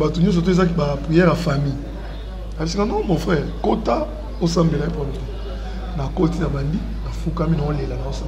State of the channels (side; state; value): both; identical; correlation 1.00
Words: surtout qui prière à famille. Elle dit non, mon frère, Kota, au Sambela pour nous. Dans Koti, dans Bandi, dans Foukami, dans Léla, dans